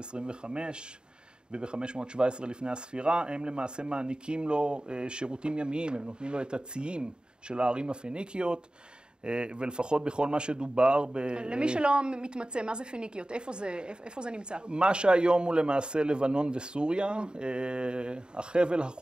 וב-517 לפני הספירה, הם למעשה מעניקים לו שירותים ימיים, הם נותנים לו את הציים של הערים הפיניקיות, ולפחות בכל מה שדובר למי שלא מתמצא, מה זה פיניקיות? איפה זה נמצא? מה שהיום הוא למעשה לבנון וסוריה, החבל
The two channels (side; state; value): left; late; 0.049 ms